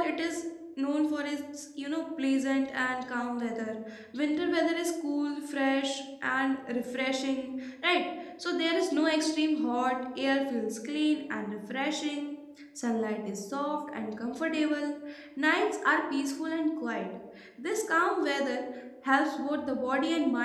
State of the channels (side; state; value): both; identical; correlation 1.00